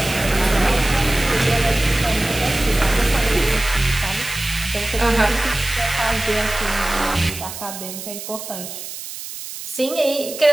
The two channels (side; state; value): right; noise; hiss, 10 dB below the sound